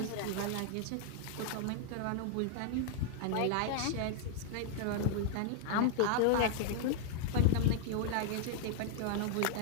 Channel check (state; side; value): different; both; correlation 0.00